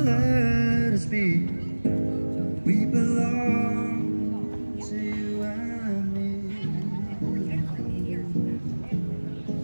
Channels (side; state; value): both; inverted; correlation -1.00